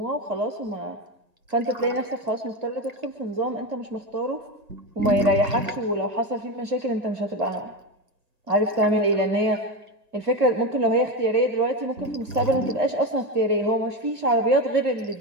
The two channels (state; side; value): late; left; 1.9 ms